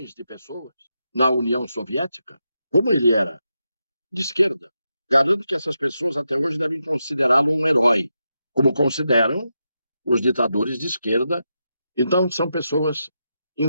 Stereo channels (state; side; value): inverted; both; correlation -0.86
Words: de pessoas na União Soviética, como ele era de esquerda, garanto que essas pessoas até hoje devem considerá-lo um herói, como consideram os ditadores de esquerda. Então, são pessoas